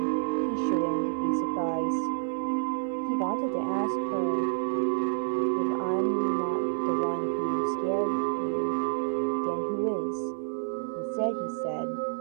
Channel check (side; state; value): left; silent; 55 dB below the other